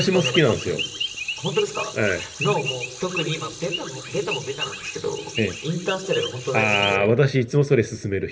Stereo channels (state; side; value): identical; both; correlation 1.00